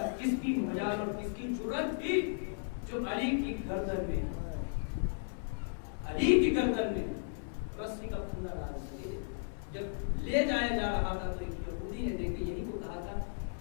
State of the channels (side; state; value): right; silent; 54 dB below the other